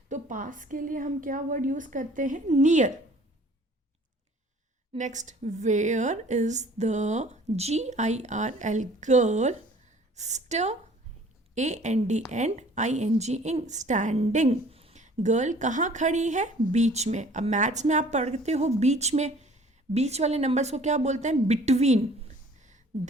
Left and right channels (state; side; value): normal; both; correlation 0.52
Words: तो पास के लिए हम क्या वर्ड यूज करते हैं, near. Next, where is the GIRL, girl. AND and ING, standing. Girl कहाँ खड़ी है, बीच में. अब मैथ्स में आप पढ़ते हो बीच में, बीच वाले नंबर्स को क्या बोलते हैं, between.